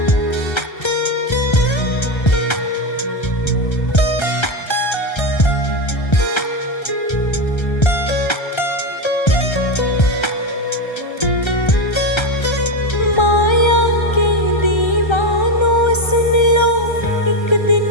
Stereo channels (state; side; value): late; right; 1.3 ms